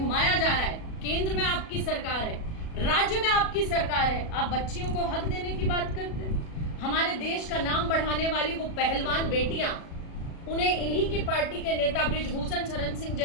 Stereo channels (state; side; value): late; right; 37 ms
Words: जा रहा है। केंद्र में आपकी सरकार है, राज्य में आपकी सरकार है, आप बच्चियों को हक देने की बात करते हैं। हमारे देश का नाम बढ़ाने वाली वो पहलवान बेटियां, उन्हें इन्हीं की पार्टी के नेता बृजभूषण शरण सिंह